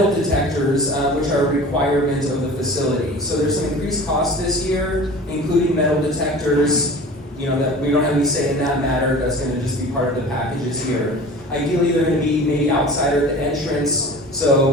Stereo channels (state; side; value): normal; both; correlation 0.39